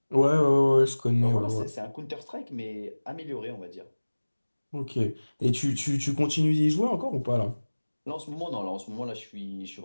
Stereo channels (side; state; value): both; inverted; correlation -1.00